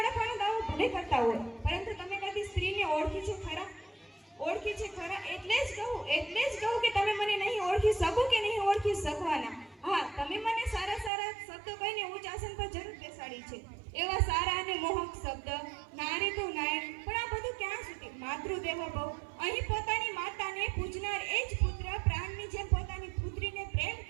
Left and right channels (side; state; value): left; drops out; at 11.1 s